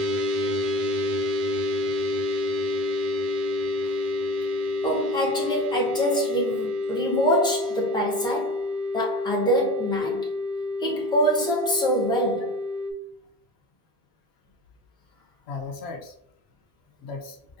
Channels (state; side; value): normal; both; correlation 0.32